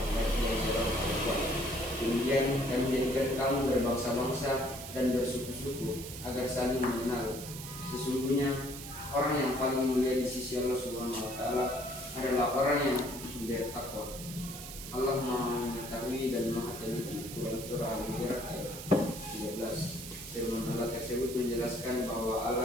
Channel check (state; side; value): noise; right; hiss, 11 dB below the sound